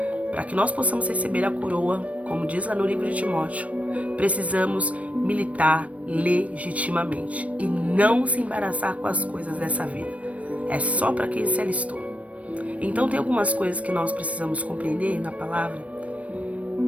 para que nós possamos receber a coroa, como diz lá no livro de Timóteo, precisamos militar legitimamente e não se embaraçar com as coisas dessa vida. É só para quem se alistou. Então tem algumas coisas que nós precisamos compreender na palavra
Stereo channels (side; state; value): left; late; 0.065 ms